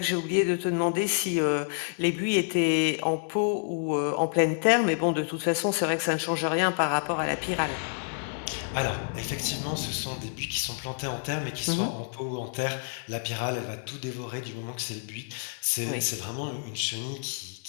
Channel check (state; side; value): silent; right; 59 dB below the other